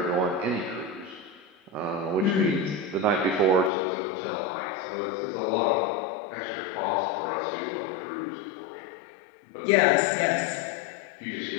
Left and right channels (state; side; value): drops out; right; at 3.7 s